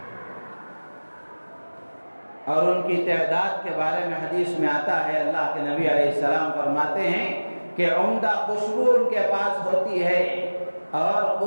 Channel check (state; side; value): inverted; both; correlation -1.00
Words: اور ان کی تعداد کے بارے میں حدیث میں آتا ہے، اللہ کے نبی علیہ السلام فرماتے ہیں کہ عمدہ خوشبو ان کے پاس ہوتی ہے، اور